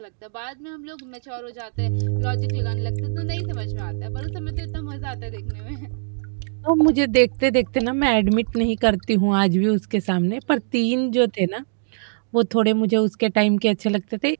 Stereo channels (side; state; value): left; silent; digital silence